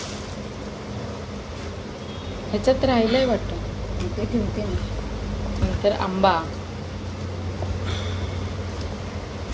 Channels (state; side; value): identical; both; correlation 1.00